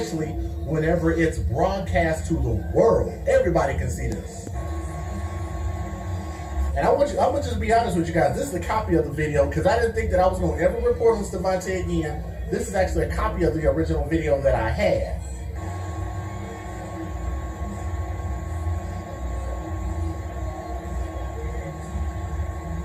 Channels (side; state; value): both; identical; correlation 1.00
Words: whenever it's broadcast to the world. Everybody can see this. And I'm gonna just be honest with you guys. This is a copy of the video because I didn't think that I was gonna ever report on Stevante again. This is actually a copy of the original video that I had.